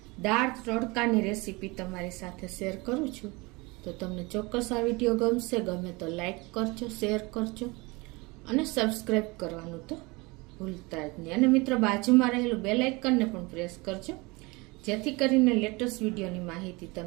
દાળ તડકાની રેસીપી તમારી સાથે શેર કરું છું. તો તમને ચોક્કસ આ વિડીયો ગમશે. ગમે તો લાઈક કરજો, શેર કરજો અને સબસ્ક્રાઈબ કરવાનું તો ભૂલતા જ નહીં. અને મિત્રો બાજુમાં રહેલું બેલ આઇકનને પણ પ્રેસ કરજો, જેથી કરીને લેટેસ્ટ વિડીયોની માહિતી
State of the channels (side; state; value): left; quieter; 25.4 dB